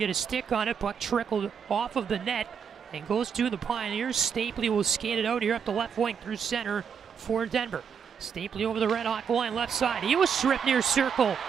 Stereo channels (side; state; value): left; quieter; 7.0 dB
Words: a stick on it. Puck trickled off of the net and goes to the Pioneers. Stapley will skate it out here up the left wing through center for Denver. Stapley over the RedHawk line, left side. He was stripped near circle